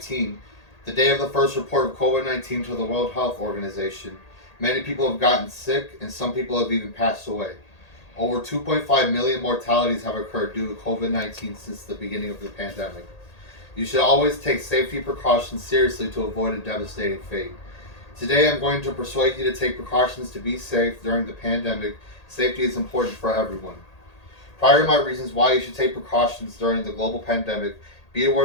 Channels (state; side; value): late; right; 1.8 ms